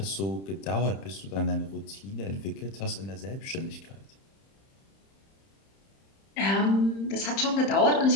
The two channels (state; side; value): late; right; 31 ms